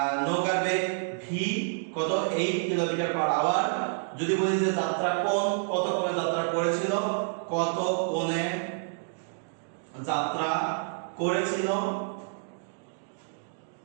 নৌকার বেগ v কত 8 কিলোমিটার পার আওয়ার, যদি বলি যে যাত্রা কোণ কত কোণে যাত্রা করেছিল, কত কোণে যাত্রা করেছিল,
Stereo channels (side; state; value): left; silent; digital silence